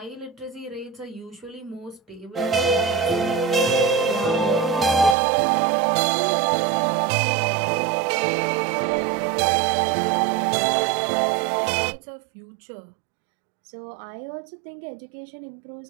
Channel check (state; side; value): drops out; left; at 5.2 s